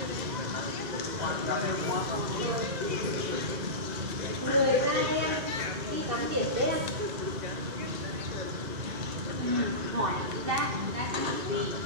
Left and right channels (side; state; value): left; late; 2.0 ms